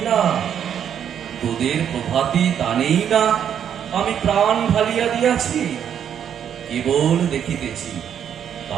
তোদের প্রভাতি টানেই না আমি প্রাণ ঢালিয়া দিয়াছি। কেবল দেখিতেছি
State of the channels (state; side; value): quieter; left; 8.9 dB